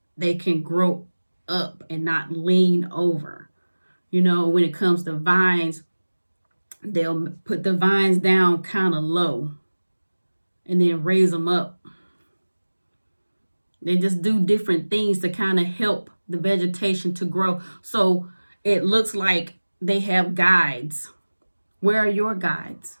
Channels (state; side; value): inverted; both; correlation -1.00